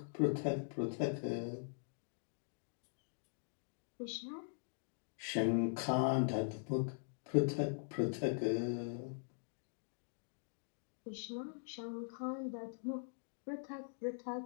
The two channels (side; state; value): right; silent; digital silence